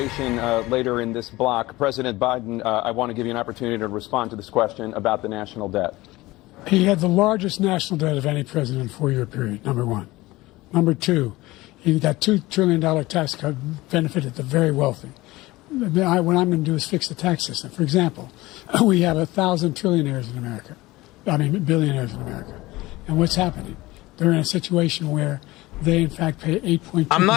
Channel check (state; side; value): quieter; right; 19.4 dB